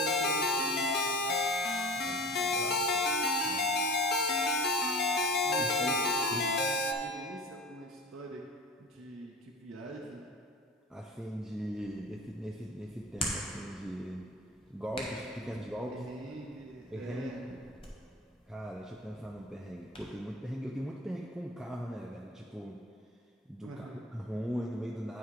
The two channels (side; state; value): both; normal; correlation 0.37